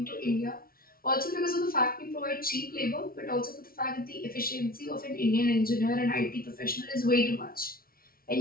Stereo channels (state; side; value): late; right; 0.43 ms